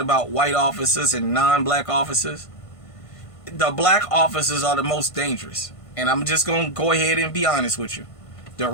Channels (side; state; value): right; late; 1.5 ms